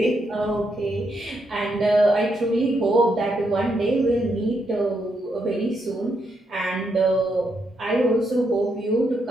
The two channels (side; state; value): both; normal; correlation 0.79